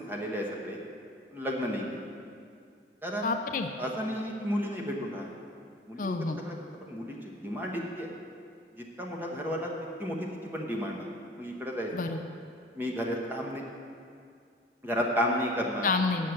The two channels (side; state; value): both; normal; correlation 0.44